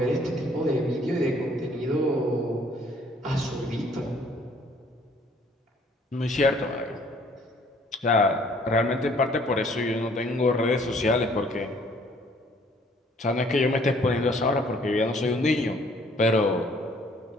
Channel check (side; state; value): both; normal; correlation 0.60